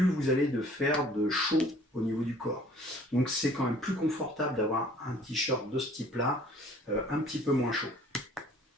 vous allez faire de chaud au niveau du corps. Donc c'est quand même plus confortable d'avoir un t-shirt de ce type-là, un petit peu moins chaud.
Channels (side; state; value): both; normal; correlation 0.54